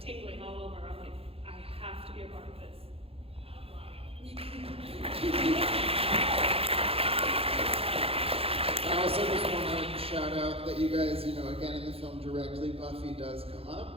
all over. I'm like, I have to be a part of this. I also just want to shout out that you guys, you know, again in the film directly, Buffy does come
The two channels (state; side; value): late; left; 0.28 ms